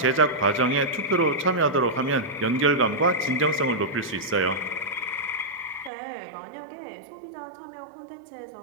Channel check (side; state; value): left; drops out; at 5.9 s